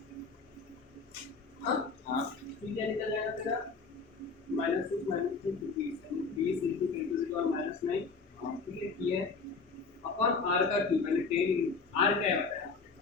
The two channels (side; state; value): right; quieter; 4.5 dB